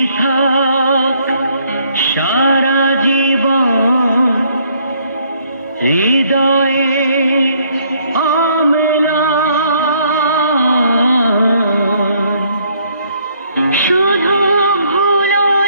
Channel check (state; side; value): inverted; both; correlation -0.67